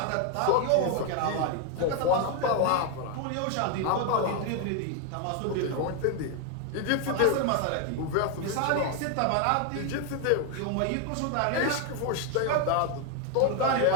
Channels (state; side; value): different; both; correlation 0.01